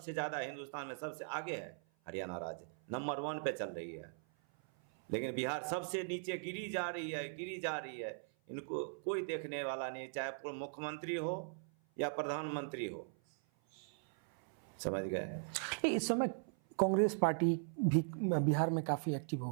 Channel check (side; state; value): left; silent; 51 dB below the other